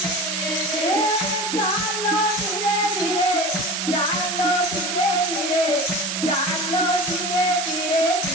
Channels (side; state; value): right; noise; hiss, 2 dB below the sound